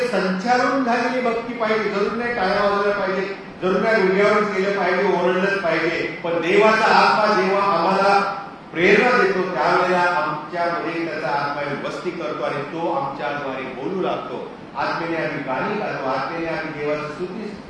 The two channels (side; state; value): both; identical; correlation 1.00